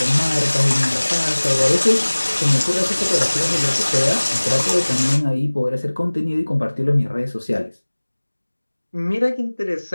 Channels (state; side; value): inverted; both; correlation -1.00